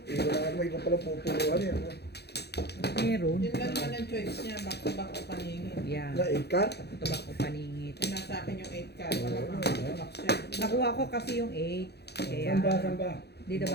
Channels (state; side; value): late; right; 0.48 ms